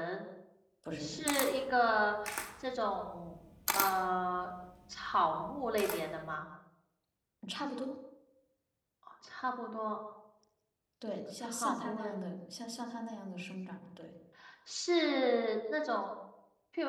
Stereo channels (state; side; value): identical; both; correlation 1.00